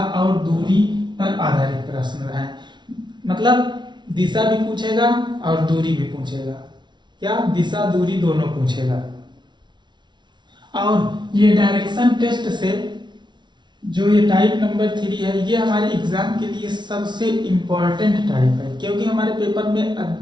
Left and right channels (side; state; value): left; late; 0.22 ms